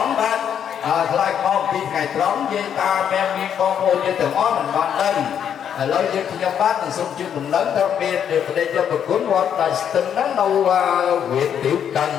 bác lại mong khi ngày trống với ta men miên mong hôn như từng ó mình ban đơn lâu như khi nhau bác từng sung chương đồng lớn theo miên để vào đây cho bậc tướng mong đại tình năng nâu huyện tiểu cần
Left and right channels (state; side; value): quieter; right; 8.7 dB